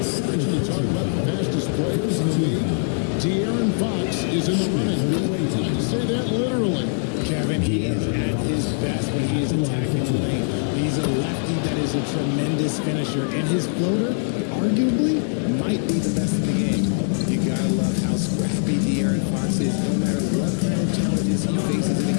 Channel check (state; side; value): silent; right; 64 dB below the other